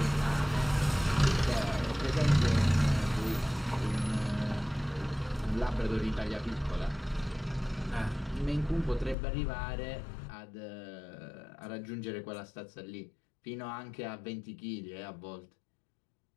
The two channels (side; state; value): right; drops out; at 9.2 s